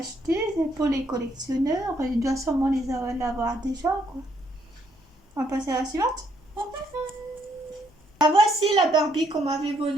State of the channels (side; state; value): both; normal; correlation 0.71